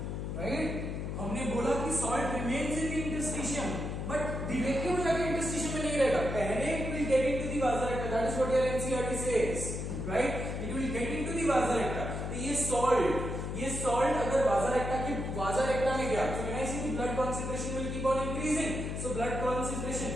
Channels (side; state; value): left; noise; hum, 4 dB below the sound